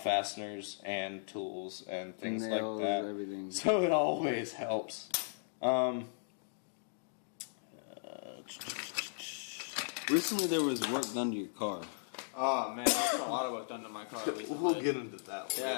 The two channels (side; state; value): right; silent; digital silence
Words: fasteners and tools and things nails, like that. Everything. So it always helps. Recently there was work done to your car. Oh man, there's a lot of work done to my car recently. We'll get into that